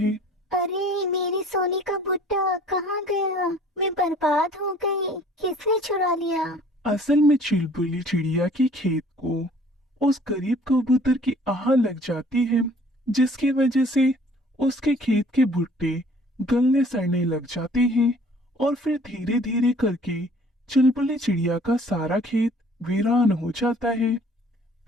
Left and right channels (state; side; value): normal; both; correlation 0.54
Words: अरे, मेरी सोने का भुट्टा कहाँ गया? मैं बर्बाद हो गई। किसने चुरा लिया? असल में चुलबुली चिड़िया के खेत को उस गरीब कबूतर की आह लग जाती है, जिसकी वजह से उसके खेत के भुट्टे गलने सड़ने लग जाते हैं और फिर धीरे धीरे करके चुलबुली चिड़िया का सारा खेत वीरान हो जाता है।